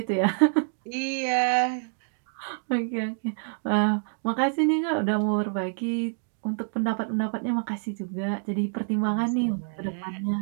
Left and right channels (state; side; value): silent; left; 60 dB below the other